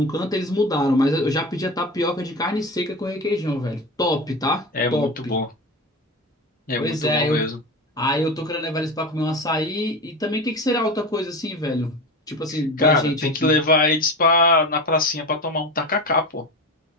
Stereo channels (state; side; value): normal; both; correlation 0.27